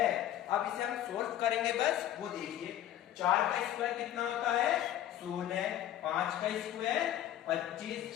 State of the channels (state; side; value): quieter; right; 12.3 dB